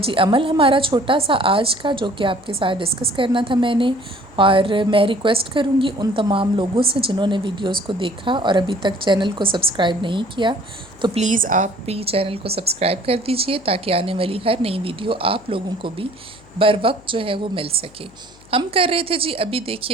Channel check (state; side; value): noise; left; hum, 25 dB below the sound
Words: عمل ہمارا چھوٹا سا آج کا، جو کہ آپ کے ساتھ ڈسکس کرنا تھا میں نے، اور میں ریکویسٹ کروں گی ان تمام لوگوں سے جنہوں نے ویڈیوز کو دیکھا اور ابھی تک چینل کو سبسکرائب نہیں کیا، تو پلیز آپ بھی چینل کو سبسکرائب کر دیجئے تاکہ آنے والی ہر نئی ویڈیو آپ لوگوں کو بھی بر وقت جو ہے وہ مل سکے۔ ہم کر رہے تھے جی، ابھی